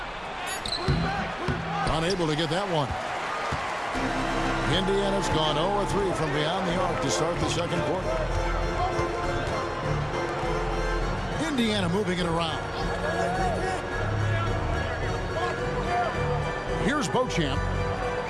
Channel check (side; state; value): both; identical; correlation 1.00